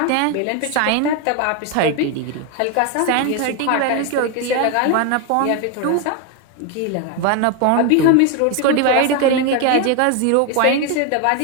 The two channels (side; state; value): both; different; correlation 0.01